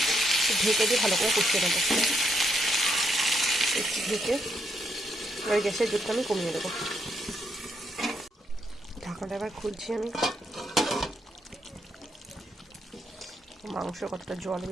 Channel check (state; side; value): normal; both; correlation 0.76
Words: ঢেকে দিয়ে ভালো করে কষিয়ে নেবো। একটু ঢেকে ওই গ্যাসের জোরটা আমি কমিয়ে দেবো। ঢাকাটা এবার খুলছি আমি। মাংস কতটা জল